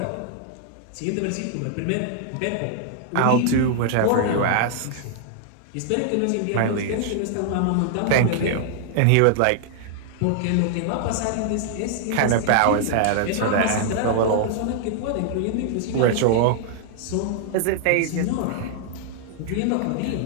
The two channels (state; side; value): different; both; correlation -0.01